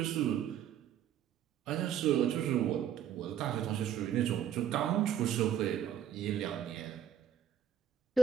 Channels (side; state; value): left; quieter; 10.3 dB